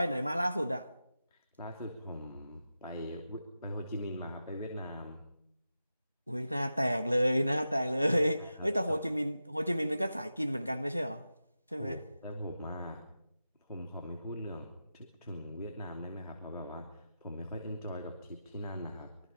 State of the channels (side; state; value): both; inverted; correlation -0.92